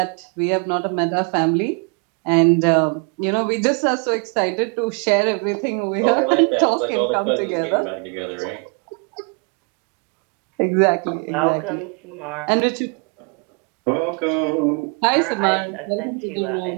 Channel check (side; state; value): left; quieter; 35.3 dB